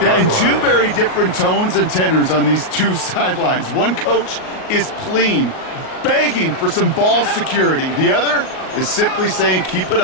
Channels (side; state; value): right; late; 38 ms